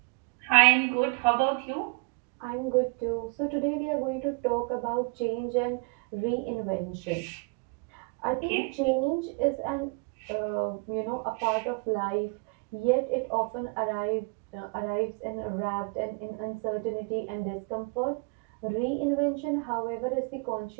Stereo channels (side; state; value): left; quieter; 34.4 dB